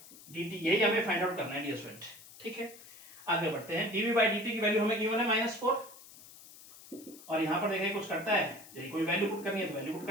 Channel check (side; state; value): left; noise; hiss, 19 dB below the sound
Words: D T, यही हमें फाइंड आउट करना है डियर स्टूडेंट। ठीक है, आगे बढ़ते हैं। डीवी बाई डी टी की वैल्यू हमें गिवन है -4 और यहाँ पर देखिए कुछ करता है, यही कोई वैल्यू पुट करनी है तो वैल्यू पुट